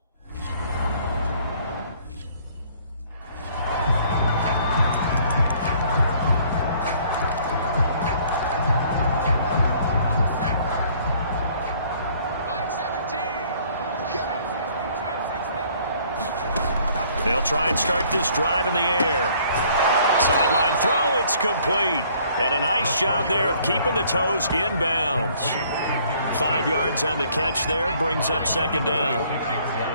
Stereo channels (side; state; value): both; inverted; correlation -0.60